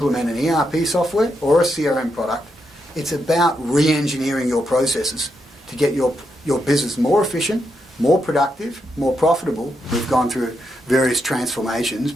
an ERP software or a CRM product, it's about re-engineering your processes to get your business more efficient, more productive, more profitable. We've gone through various transformations,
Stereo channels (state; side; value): normal; both; correlation 0.82